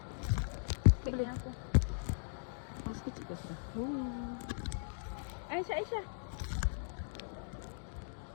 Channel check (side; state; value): right; silent; digital silence